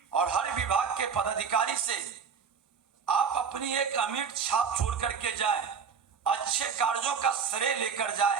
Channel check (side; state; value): left; quieter; 6.4 dB